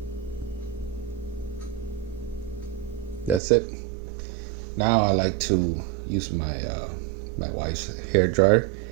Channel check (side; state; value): left; drops out; at 3.4 s